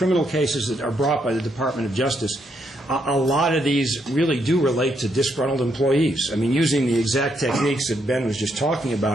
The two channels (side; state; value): both; normal; correlation 0.76